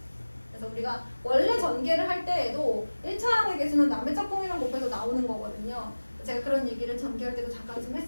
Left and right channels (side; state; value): both; inverted; correlation -1.00